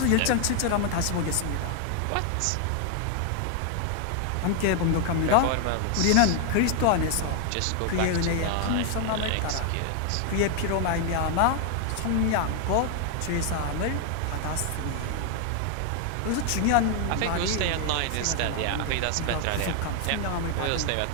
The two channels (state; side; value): different; both; correlation 0.00